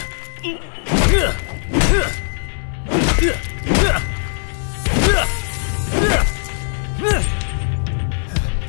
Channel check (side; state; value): right; silent; digital silence